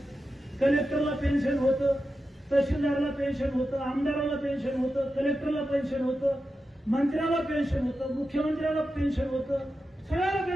कलेक्टरला पेन्शन होतं, तहसीलदारला पेन्शन होतं, आमदाराला पेन्शन होतं, कलेक्टरला पेन्शन होतं, मंत्र्याला पेन्शन होतं, मुख्यमंत्र्याला पेन्शन होतं, सगळ्याला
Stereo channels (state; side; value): normal; both; correlation 0.90